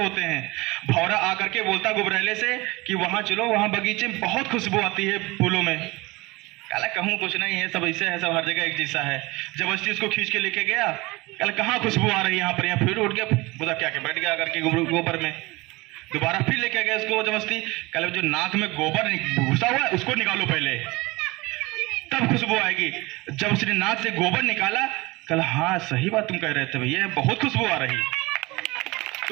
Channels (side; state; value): left; quieter; 22.7 dB